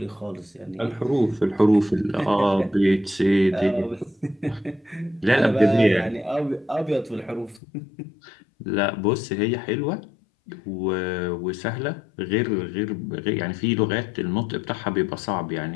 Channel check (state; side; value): drops out; right; at 7.6 s